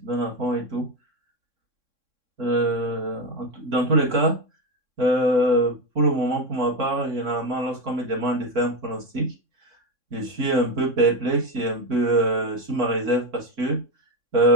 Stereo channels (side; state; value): left; late; 3.6 ms